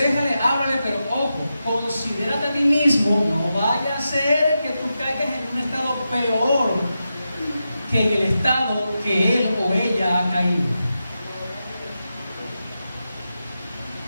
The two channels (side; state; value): both; inverted; correlation -0.89